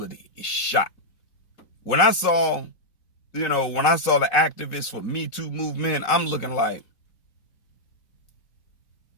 is shot. When I saw the activists for Me Too movement, I'm looking like,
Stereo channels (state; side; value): late; right; 4.0 ms